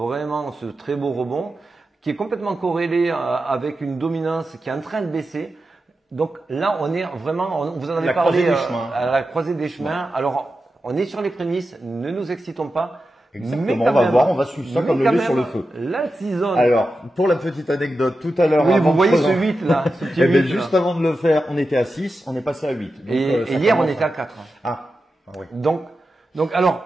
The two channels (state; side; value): normal; both; correlation 0.91